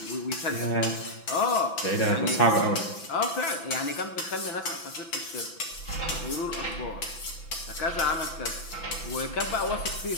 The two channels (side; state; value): right; late; 6.0 ms